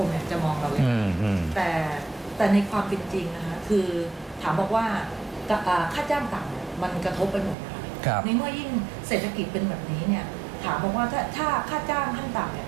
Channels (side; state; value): left; drops out; at 7.6 s